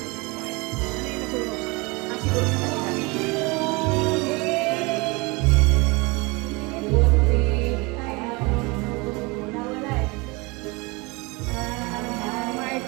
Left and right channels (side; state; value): left; quieter; 26.3 dB